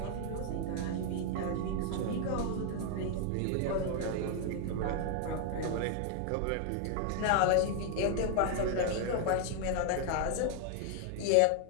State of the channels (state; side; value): different; both; correlation 0.00